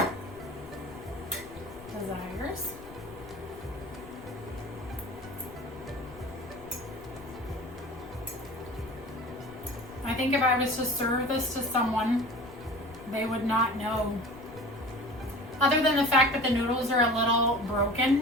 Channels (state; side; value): noise; left; rumble, 20 dB below the sound